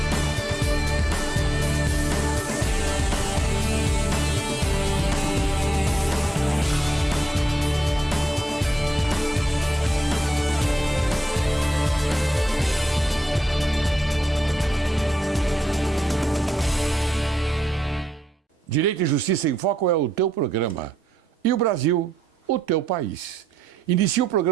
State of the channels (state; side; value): normal; both; correlation 0.82